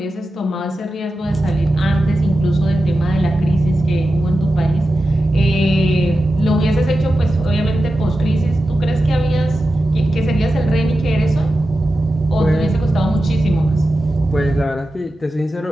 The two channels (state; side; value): normal; both; correlation 0.92